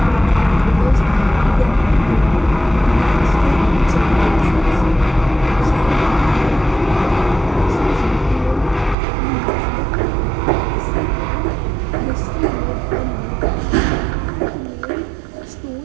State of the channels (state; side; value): drops out; left; at 9.0 s